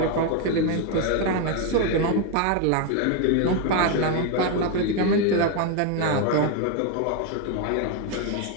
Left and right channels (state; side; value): different; both; correlation 0.01